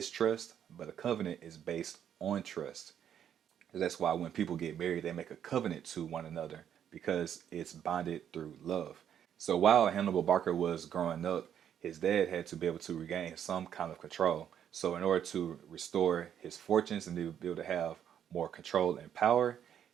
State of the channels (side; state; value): left; quieter; 9.4 dB